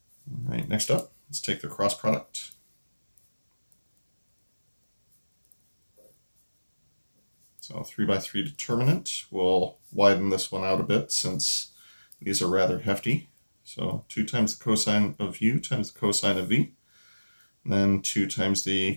All right, next up, let's take the cross product. So 3 by 3 determinant. We'll widen this one out a bit since these are rather hefty. So 2 times the cosine of u times the cosine of v. And then 2 times the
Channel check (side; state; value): both; inverted; correlation -1.00